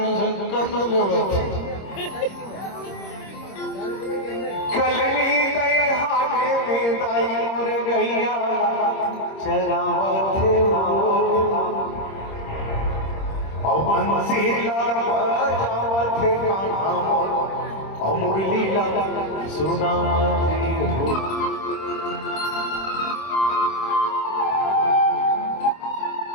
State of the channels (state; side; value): late; right; 26 ms